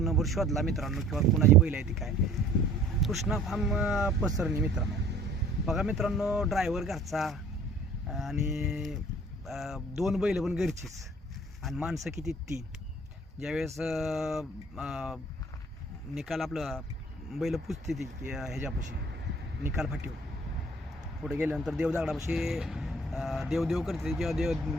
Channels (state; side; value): normal; both; correlation 0.53